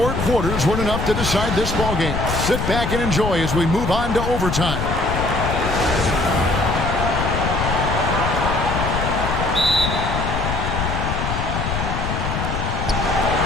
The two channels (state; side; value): noise; left; rumble, 2 dB below the sound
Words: quarters weren't enough to decide this ballgame. Sit back and enjoy as we move on to overtime.